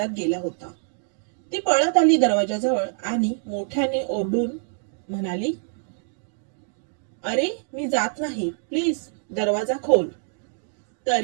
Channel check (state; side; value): silent; left; digital silence